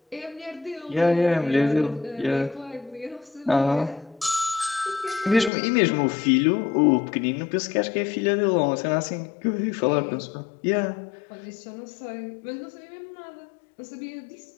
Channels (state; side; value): drops out; right; at 5.5 s